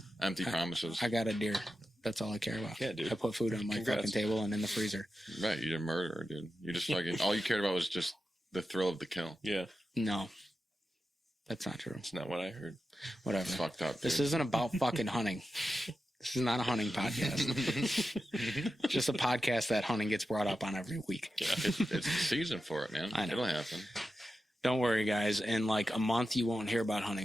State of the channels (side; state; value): both; normal; correlation 0.91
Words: Empty promises. I got a deer. That's all I care about. Yeah, dude. I put food on my fucking table and in the freezer. Right, you did murder, dude. You just fucking all you cared about was just the thrill of the kill. Yeah. No. That's not true. That's not what I heard. Whatever. It's fucked up. Dude. This isn't about fucking hunting. This is not a hunting podcast. It's just a podcast that hunting gets brought up on every week. Yeah, it's the season for it, man. I know. It'll happen. Don't worry, guys. In like a month, you won't hear about